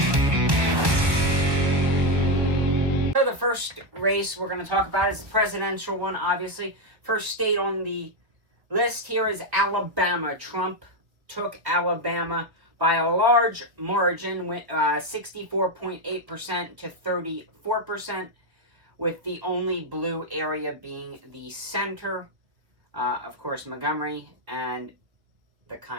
the first race we're going to talk about is the presidential one, obviously. First state on the list here is Alabama. Trump took Alabama by a large margin, 64.8% to 34%, with the only blue area being the center. Of course, Montgomery and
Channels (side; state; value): left; late; 1.1 ms